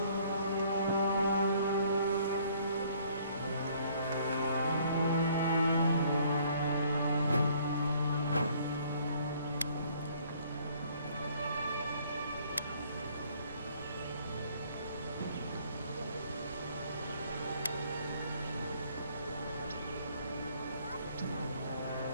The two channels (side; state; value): both; inverted; correlation -0.61